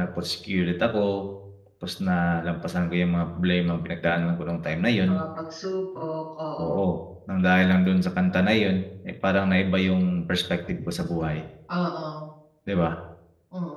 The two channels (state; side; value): identical; both; correlation 1.00